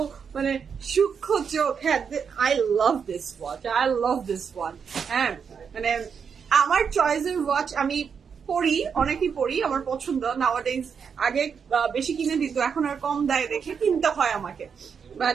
মানে সূক্ষ্ম চোখ। হ্যাঁ, আই লাভ দিস ওয়াচ, হ্যাঁ মানে আমার চয়েসের ওয়াচ আমি পরি, অনেকই পরি, আমার পছন্দ। নাওয়াডেজ আগে বেশি কিনে দিত, এখন আর কম দেয় দেখে কিনতে হয় আমাকে। বাট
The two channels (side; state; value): left; quieter; 6.6 dB